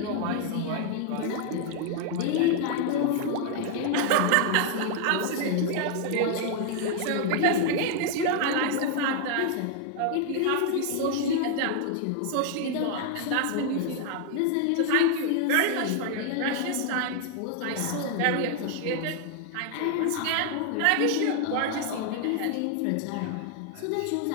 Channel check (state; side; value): different; both; correlation 0.00